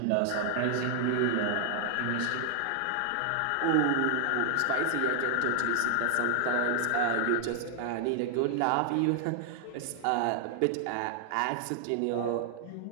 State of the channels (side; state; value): both; different; correlation 0.00